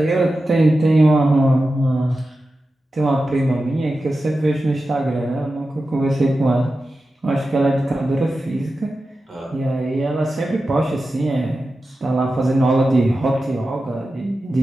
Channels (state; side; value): normal; both; correlation 0.92